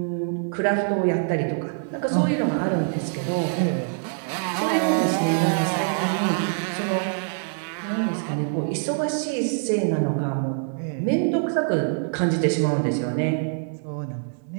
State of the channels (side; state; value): left; silent; 62 dB below the other